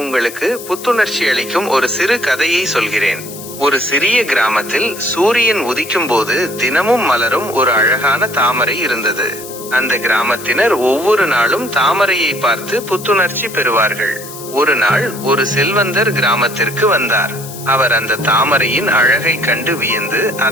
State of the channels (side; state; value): left; noise; hiss, 13 dB below the sound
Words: உங்களுக்கு புத்துணர்ச்சி அளிக்கும் ஒரு சிறு கதையை சொல்கிறேன். ஒரு சிறிய கிராமத்தில் சூரியன் உதிக்கும் போது தினமும் மலரும் ஒரு அழகான தாமரை இருந்தது. அந்த கிராமத்தினர் ஒவ்வொரு நாளும் தாமரையை பார்த்து புத்துணர்ச்சி பெறுவார்கள். ஒரு நாள் ஒரு செல்வந்தர் கிராமத்திற்கு வந்தார். அவர் அந்த தாமரையின் அழகை கண்டு வியந்து